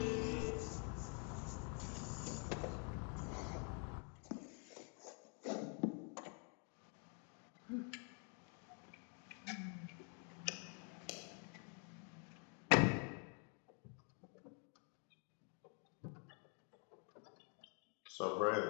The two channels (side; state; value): right; quieter; 39.6 dB